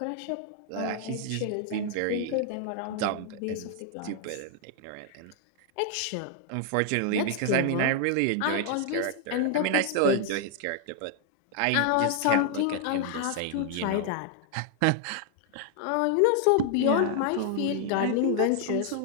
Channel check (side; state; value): both; different; correlation 0.00